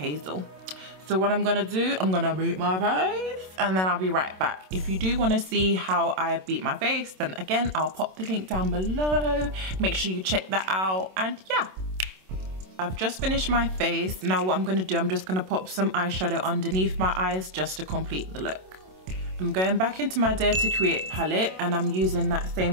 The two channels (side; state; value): left; late; 27 ms